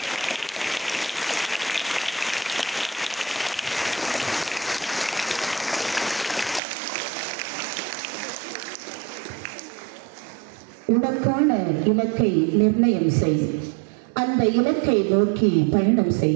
உனக்கான இலக்கை நிர்ணயம் செய், அந்த இலக்கை நோக்கி பயணம்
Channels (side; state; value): left; drops out; at 6.6 s